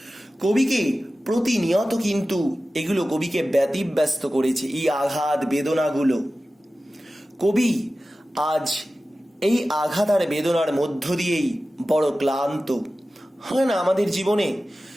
কবিকে প্রতিনিয়ত কিন্তু এগুলো কবিকে ব্যতিব্যস্ত করেছে, এই আঘাত বেদনাগুলো। কবি আজ এই আঘাত আর বেদনার মধ্য দিয়েই বড় ক্লান্ত। হয় না আমাদের জীবনে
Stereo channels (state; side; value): normal; both; correlation 0.95